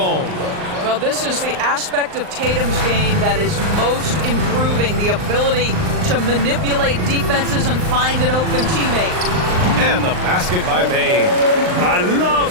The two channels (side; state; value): left; late; 39 ms